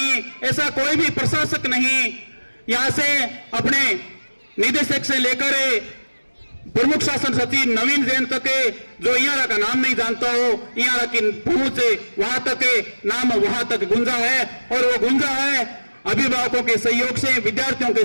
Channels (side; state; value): both; inverted; correlation -1.00